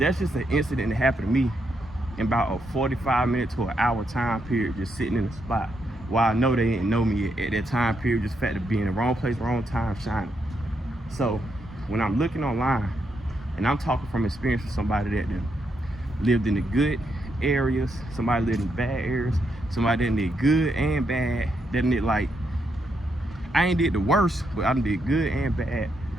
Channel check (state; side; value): normal; both; correlation 0.80